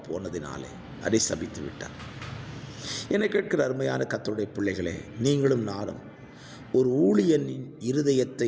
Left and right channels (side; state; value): both; identical; correlation 1.00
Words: போனதினாலே அதை சபித்து விட்டார். என்னை கேட்கிற அருமையான கர்த்தருடைய பிள்ளைகளே, நீங்களும் நானும் ஒரு ஊழியனின்